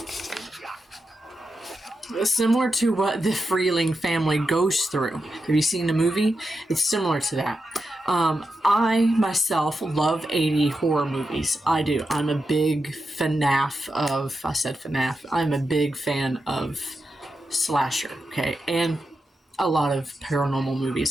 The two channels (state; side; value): normal; both; correlation 0.88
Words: similar to what the Freeling family goes through. Have you seen the movie? It's similar to that. I myself love 80 horror movies. I do. I'm a big FNAF of, I said FNAF. I'm a big fan of slasher, okay? And a lot of paranormal